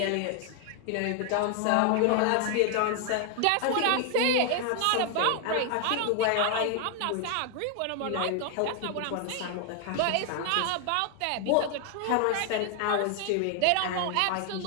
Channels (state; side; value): different; both; correlation 0.00